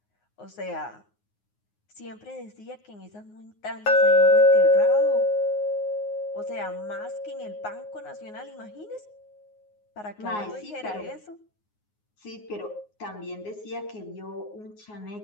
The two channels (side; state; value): right; late; 9.5 ms